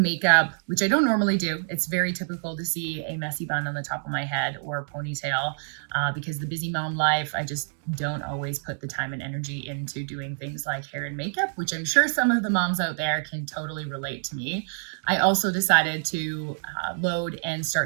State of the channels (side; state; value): left; silent; digital silence